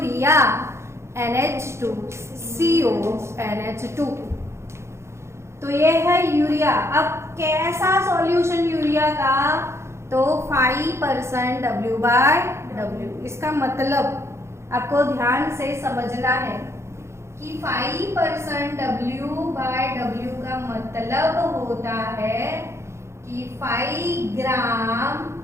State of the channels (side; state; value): left; late; 0.13 ms